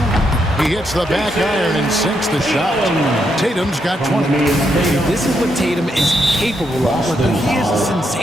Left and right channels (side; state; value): both; normal; correlation 0.79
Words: He hits the back iron and sinks the shot. Tatum's got 20. This is what Tatum is capable of. Look, he is a